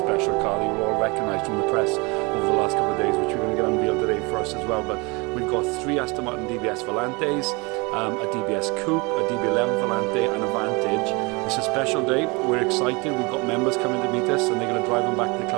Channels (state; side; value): quieter; left; 27.7 dB